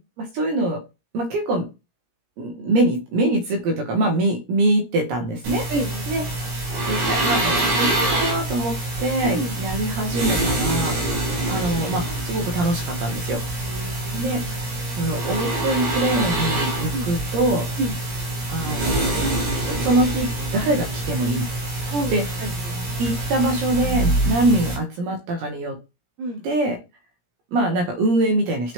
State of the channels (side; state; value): left; late; 17 ms